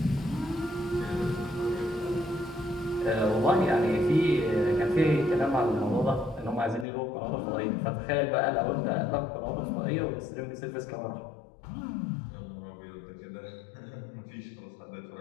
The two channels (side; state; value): right; drops out; at 6.9 s